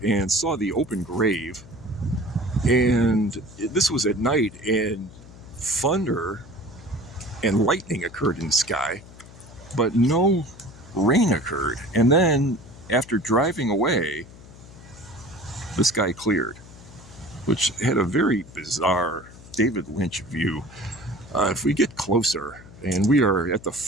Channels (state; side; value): noise; left; hum, 19 dB below the sound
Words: and saw the open grave, and this was at night, and thunder and lightning occurred in the sky, but no rain occurred. And then after driving away, the sky cleared, which had a very bizarre David Lynch view. If we get closer, and we are at the